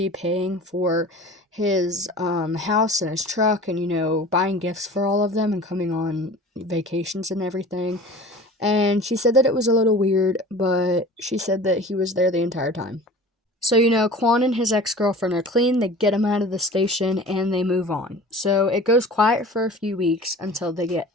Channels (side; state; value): both; normal; correlation 0.41